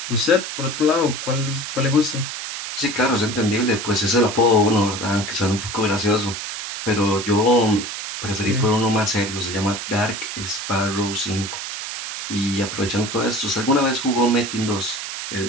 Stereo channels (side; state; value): right; noise; hiss, 6 dB below the sound